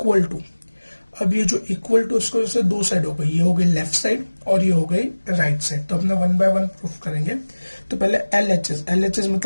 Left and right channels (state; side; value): inverted; both; correlation -1.00